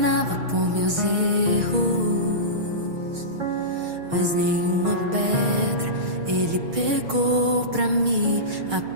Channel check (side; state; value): left; late; 6.5 ms